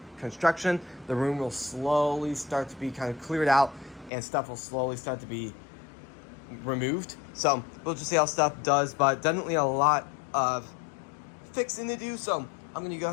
construction. The room will slowly start to be kind of cleared out, and stuff will slowly start to be removed. So we'll just see how stuff does, but definitely a lot of fixing to do. So I'm going to go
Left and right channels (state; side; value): drops out; right; at 4.1 s